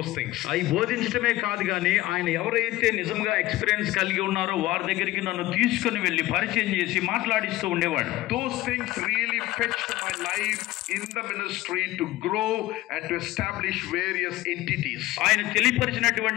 things. అవి బోధించడమే కాదు కానీ ఆయన ఎవరైతే నిజంగా ఎక్స్పీరియన్స్ కలిగి ఉన్నారో వారి దగ్గరికి నన్ను తీసుకుని వెళ్ళి పరిచయం చేసి మాట్లాడిస్తూ ఉండేవాడు. Those things really fetched my life in the ministry to grow and to establish various entities. ఆయన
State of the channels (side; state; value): right; quieter; 17.1 dB